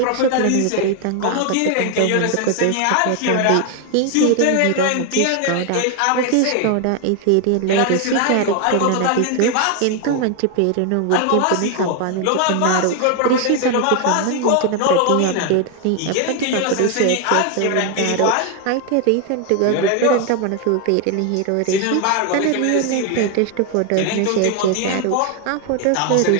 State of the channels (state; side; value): different; both; correlation 0.01